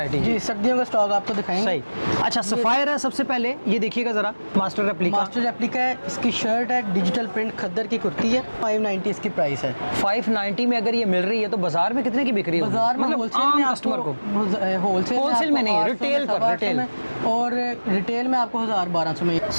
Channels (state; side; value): inverted; both; correlation -1.00